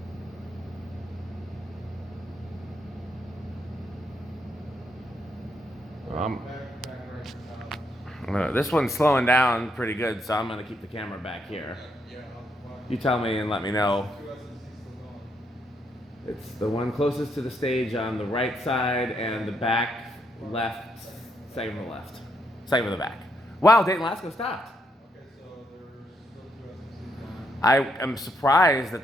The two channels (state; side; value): normal; both; correlation 0.76